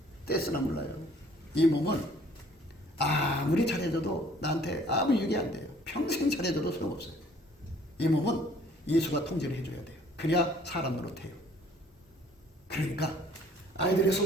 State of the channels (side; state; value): both; normal; correlation 0.57